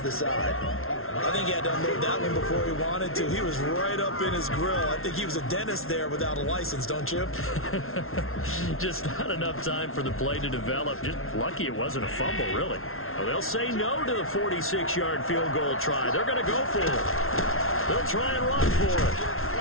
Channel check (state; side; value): late; right; 0.62 ms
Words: the side. I think he had to unload that one before he wanted to. He was right up in his grill. I think he was a dentist there without a license, don't you? Just not enough time for the play to develop. Just lucky it wasn't a fumble, really. Well, they'll say no to the 46-yard field goal try. They're going to go for it. They'll try and run for it.